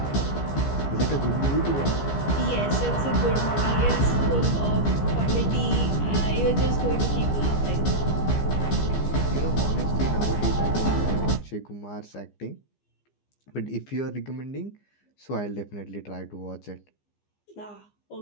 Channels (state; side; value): late; right; 15 ms